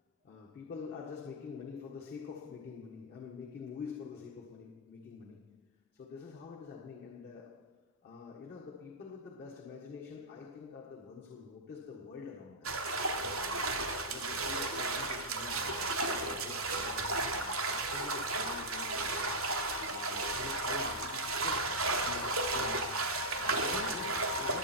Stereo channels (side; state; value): both; normal; correlation -0.09